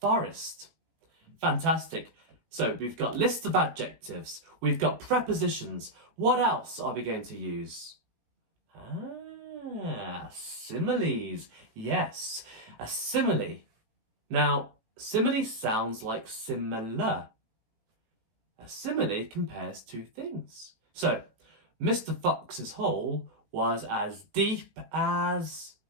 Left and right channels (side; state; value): left; late; 18 ms